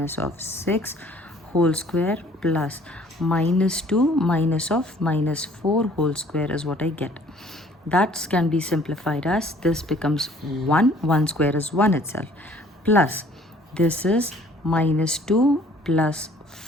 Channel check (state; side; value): normal; both; correlation 0.56